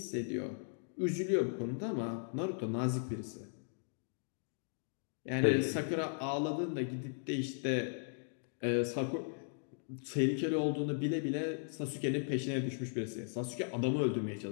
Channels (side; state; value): right; silent; digital silence